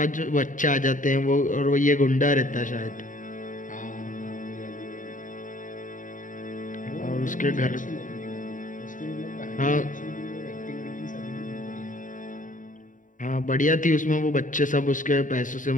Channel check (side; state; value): right; late; 0.38 ms